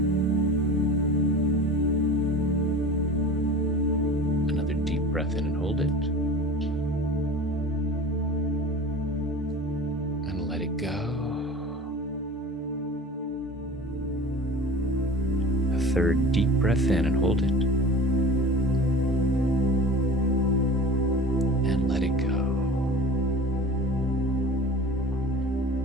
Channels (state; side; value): normal; both; correlation 0.38